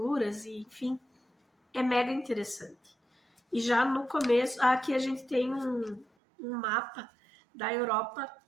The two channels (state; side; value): drops out; left; at 6.1 s